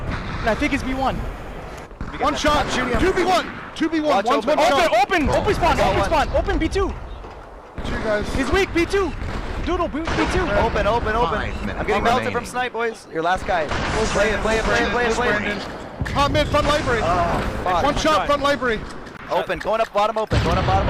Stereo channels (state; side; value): identical; both; correlation 1.00